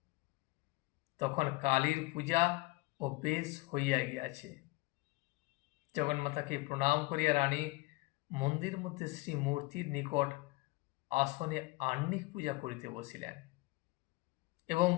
তখন কালীর পূজা ও বেশ হইয়া গিয়াছে। জগন্মাতাকে প্রণাম করিয়া রানী মন্দির মধ্যে শ্রীমূর্তির নিকট আসনে আহ্নিক পূজা করিতে বসিলেন এবং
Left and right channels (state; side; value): quieter; right; 22.2 dB